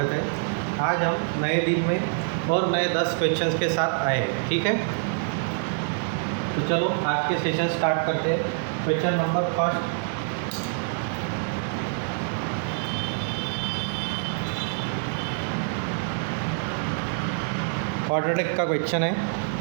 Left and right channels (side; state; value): left; silent; digital silence